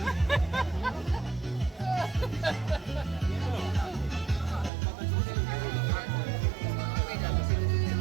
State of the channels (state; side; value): drops out; left; at 4.7 s